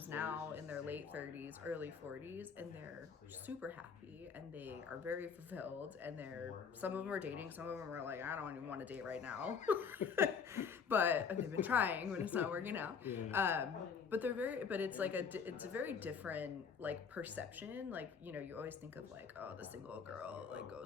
now in their late 30s, early 40s, and they're super happy and they are very fulfilled. And some of them are dating, some of them are like, I don't even want to date right now. But they've been trying when it's not working out. Yeah. But it's like it's a very different like perception. Like, you always think of like, oh, the single girl like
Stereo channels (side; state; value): right; quieter; 6.3 dB